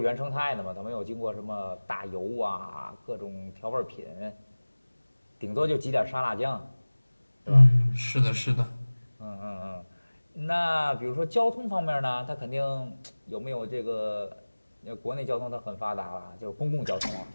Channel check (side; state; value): both; inverted; correlation -1.00